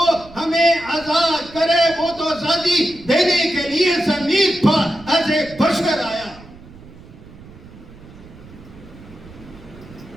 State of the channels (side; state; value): right; noise; rumble, 20 dB below the sound